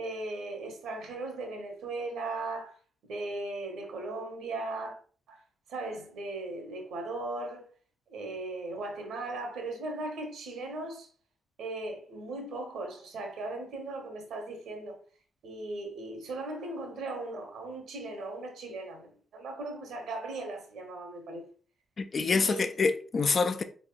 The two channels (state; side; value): normal; both; correlation 0.72